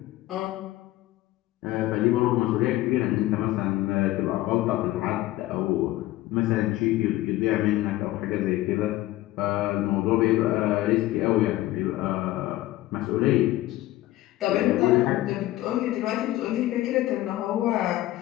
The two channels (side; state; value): right; quieter; 16.3 dB